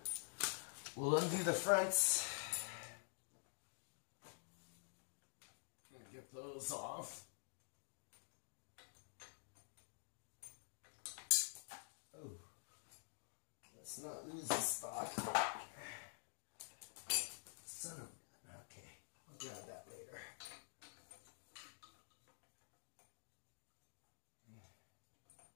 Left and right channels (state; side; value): silent; right; digital silence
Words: We'll undo the fronts and get those off. Oh, let's not lose the stock. Son of a gun. Okay, I'll grab that later.